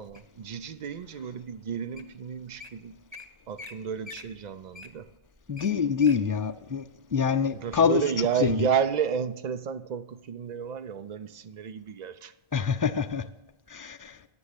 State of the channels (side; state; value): left; late; 1.3 ms